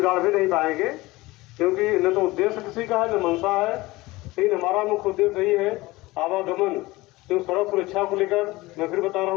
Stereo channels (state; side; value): quieter; right; 20.3 dB